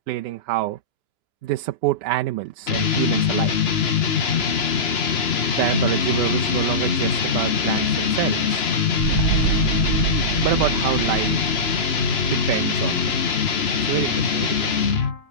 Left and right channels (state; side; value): late; right; 2.9 ms